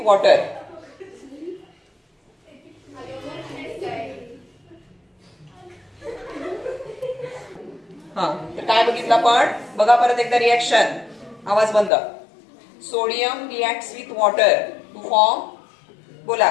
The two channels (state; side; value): drops out; right; at 11.9 s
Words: वॉटर तर काय बघितलं आपण बघा परत एकदा रिॲक्शन. आवाज बंद. Sodium reacts with water to form बोला